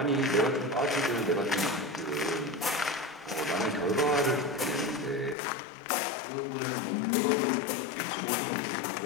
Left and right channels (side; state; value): right; drops out; at 5.4 s